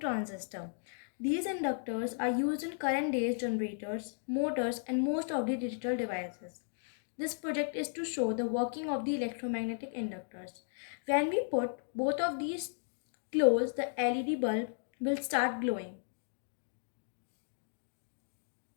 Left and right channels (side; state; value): right; silent; digital silence